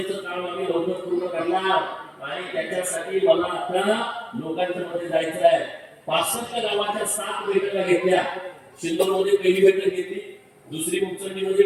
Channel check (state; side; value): identical; both; correlation 1.00